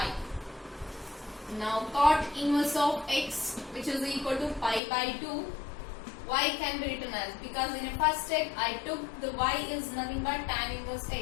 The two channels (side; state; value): right; drops out; at 4.8 s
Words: Now cot inverse of x, which is equal to pi by 2, y can be written as, because in a first step I took the y is nothing but tan inverse